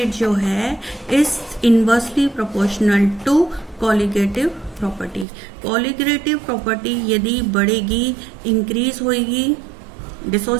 जो है is inversely proportional to colligative property. Colligative property यदि बढ़ेगी, इंक्रीज होगी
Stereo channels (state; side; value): drops out; left; at 5.2 s